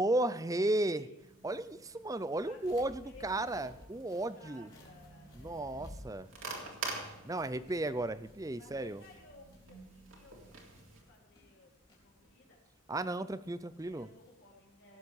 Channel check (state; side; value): normal; both; correlation 0.64